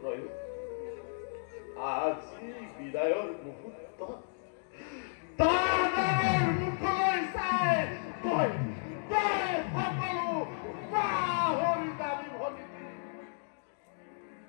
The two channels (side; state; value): right; silent; digital silence